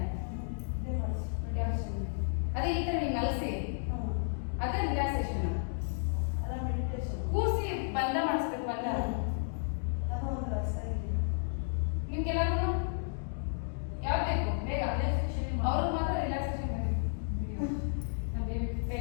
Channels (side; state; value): right; silent; digital silence